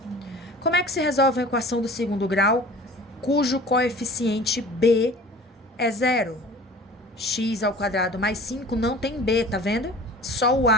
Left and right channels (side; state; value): both; normal; correlation 0.43